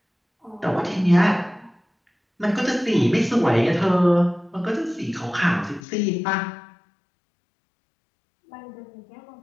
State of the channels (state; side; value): drops out; right; at 5.8 s